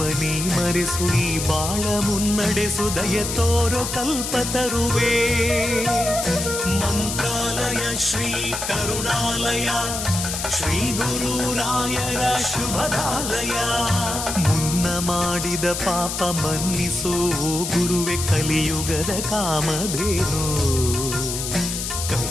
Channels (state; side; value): noise; left; hiss, 4 dB below the sound